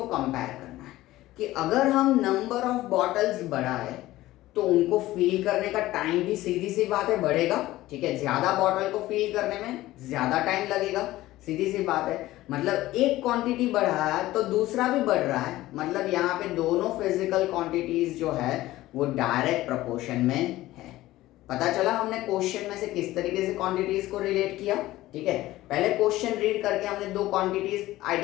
कंपेयर करना है कि अगर हम नंबर ऑफ बॉटल्स बढ़ाए तो उनको फिल करने का टाइम भी सीधी सी बात है बढ़ेगा, ठीक है। ज्यादा बॉटल को फिल करने में ज्यादा टाइम लगेगा, सीधी सी बात है। मतलब एक क्वांटिटी बढ़ा है तो दूसरा भी बढ़ रहा है, मतलब यहाँ पे दोनों फिजिकल क्वांटिटीज जो है वो डायरेक्ट प्रोपोर्शन में है। पता चला हमने क्वेश्चन में से किस तरीके से क्वांटिटीज को रिलेट किया, ठीक है। पहले क्वेश्चन रीड करके हमने दो क्वांटिटीज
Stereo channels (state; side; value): quieter; right; 16.5 dB